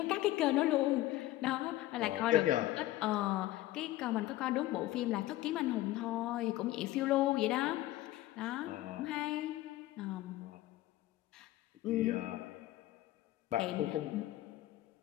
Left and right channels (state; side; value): quieter; right; 15.9 dB